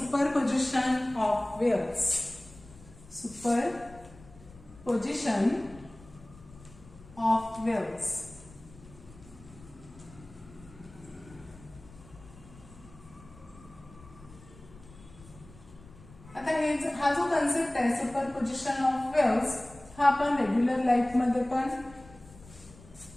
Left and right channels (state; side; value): noise; left; rumble, 21 dB below the sound